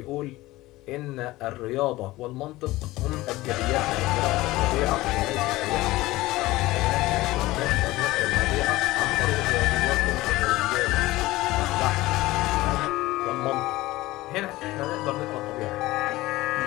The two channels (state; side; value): quieter; right; 18.4 dB